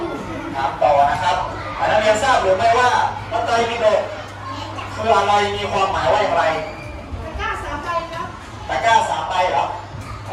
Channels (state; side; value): identical; both; correlation 1.00